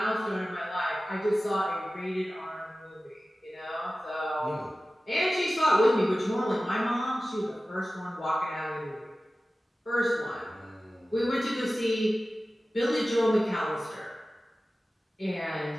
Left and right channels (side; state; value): both; normal; correlation 0.96